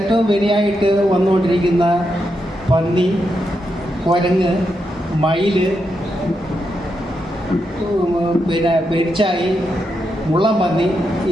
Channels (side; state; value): both; normal; correlation 0.84